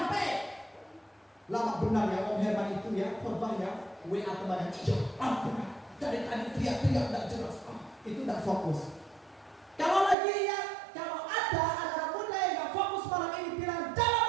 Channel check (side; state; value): left; drops out; at 10.2 s